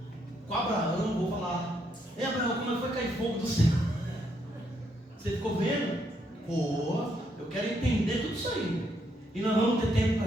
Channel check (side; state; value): both; normal; correlation 0.75